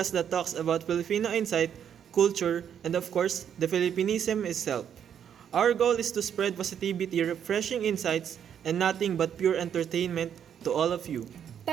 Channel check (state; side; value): quieter; left; 8.7 dB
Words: that talks about Filipino insight, culture, and of course, the Filippinism itself. Our goal is to spread positivity, refreshing insights, and nothing but pure entertainment to all of you.